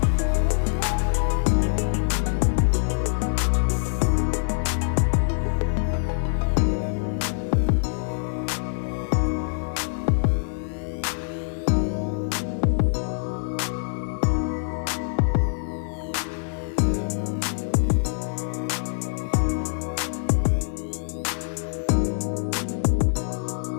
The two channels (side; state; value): right; silent; digital silence